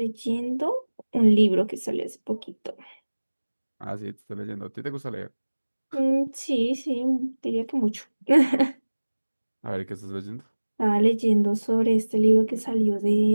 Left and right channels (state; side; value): inverted; both; correlation -1.00